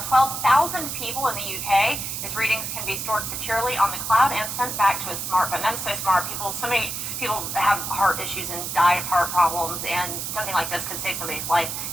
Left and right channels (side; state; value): right; noise; hiss, 4 dB below the sound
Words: 12,000 people in the UK. Its readings can be stored securely on the cloud and sent back to a smartphone. That is so smart. So many people have heart issues and die of heart problems, and something like this could save somebody's life.